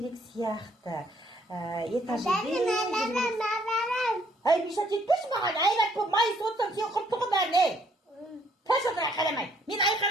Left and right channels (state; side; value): normal; both; correlation 0.66